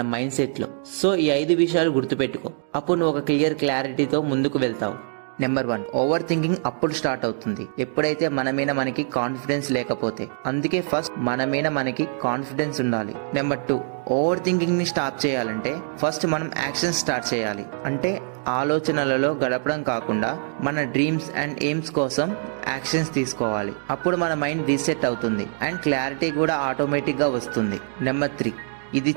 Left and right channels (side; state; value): left; silent; 63 dB below the other